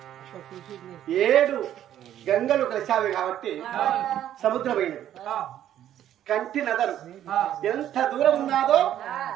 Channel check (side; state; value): left; quieter; 11.3 dB